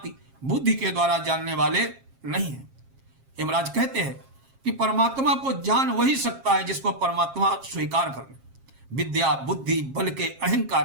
बुद्धि के द्वारा जानने वाले नहीं हैं। यमराज कहते हैं कि परमात्मा को जान वही सकता है जिसको परमात्मा स्वीकार कर ले। विद्या बुद्धि बल के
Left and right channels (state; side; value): late; left; 7.4 ms